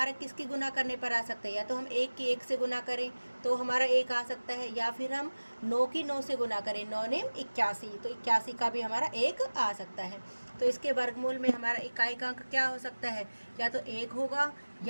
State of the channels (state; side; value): inverted; both; correlation -1.00